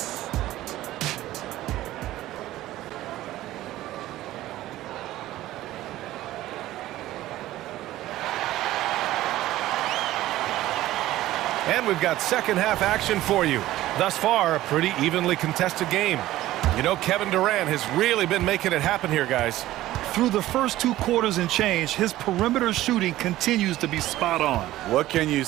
And we've got second half action for you. Thus far, a pretty evenly contested game. You know, Kevin Durant has really been making it happen here, guys. Through the first 2 quarters and change, his perimeter shooting continues to be spot on. What can you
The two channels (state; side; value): quieter; left; 15.3 dB